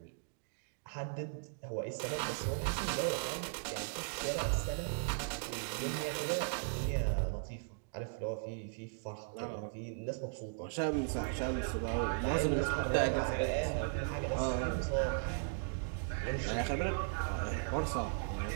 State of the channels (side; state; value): left; silent; digital silence